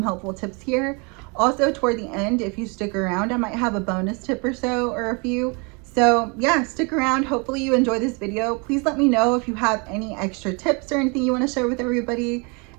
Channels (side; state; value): left; quieter; 31.9 dB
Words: helpful tips here. Also, toward the end, if you stick around, I might have a bonus tip or so, or a few. So yeah, stick around. Hopefully you enjoy this video. Please let me know if you have any extra tips or anything you want to share with everybody.